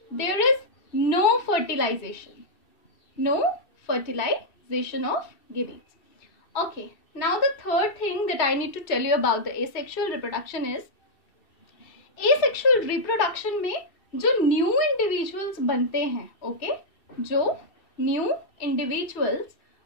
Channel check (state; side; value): late; right; 2.7 ms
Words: there is no fertilization, no fertilization of gametes. Okay, now the third thing that I need to tell you about the asexual reproduction is, asexual reproduction में जो न्यू इंडिविजुअल्स बनते हैं, okay, जो new individuals